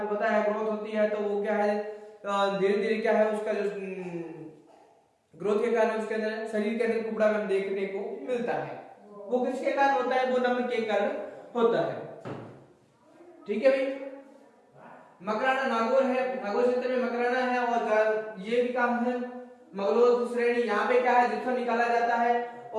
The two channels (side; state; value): both; identical; correlation 1.00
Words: बताया ग्रोथ होती है, तो वो क्या है धीरे धीरे क्या है उसका जो ग्रोथ के कारण उसके अंदर शरीर के अंदर कुबड़ा में देखने को मिलता है। वो किसके कारण होता है, वो नमक के कारण होता है। ठीक है भाई। मकराना नागौर है, नागौर क्षेत्र में मकराना है, और ये भी काम है मगलोद श्रेणी। यहाँ पे क्या है, जिप्सम निकाला जाता है।